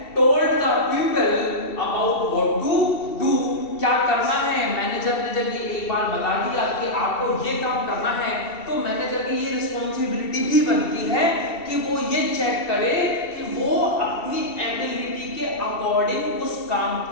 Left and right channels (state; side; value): late; right; 2.7 ms